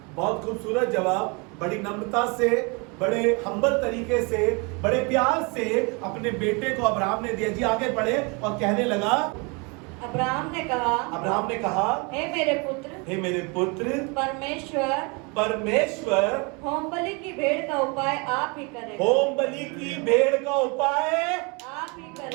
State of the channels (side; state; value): left; quieter; 30.7 dB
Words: बहुत खूबसूरत जवाब। बड़ी नम्रता से, बड़े हम्बल तरीके से, बड़े प्यार से अपने बेटे को अब्राहम ने दिया। जी आगे बढ़े और कहने लगा, अब्राहम ने कहा, हे मेरे पुत्र, परमेश्वर होम बलि की भेड़ का उपाय आप ही करेगा। होम बलि की भेड़ का उपाय आप ही